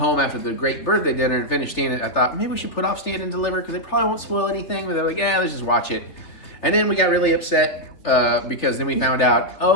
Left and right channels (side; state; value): right; late; 3.4 ms